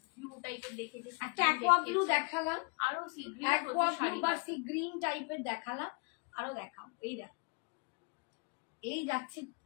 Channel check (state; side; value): quieter; right; 31.9 dB